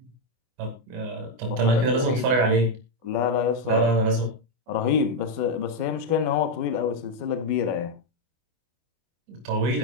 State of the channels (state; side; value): late; left; 24 ms